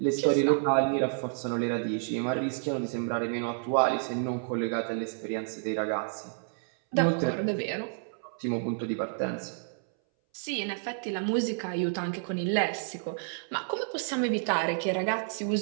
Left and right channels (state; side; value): silent; left; 58 dB below the other